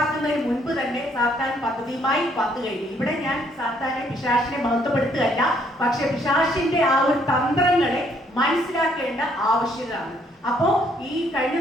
മുൻപ് തന്നെ സാത്താൻ പദ്ധതിയുമായി വന്നു കഴിഞ്ഞു. ഇവിടെ ഞാൻ സാത്താനെ, പിശാചിനെ മഹത്വപ്പെടുത്തുകയല്ല, പക്ഷെ പിശാചിന്റെ ആ ഒരു തന്ത്രങ്ങളെ മനസ്സിലാക്കേണ്ട ആവശ്യകതയാണ്. അപ്പോ ഈ കഴിഞ്ഞ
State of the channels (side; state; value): both; normal; correlation 0.67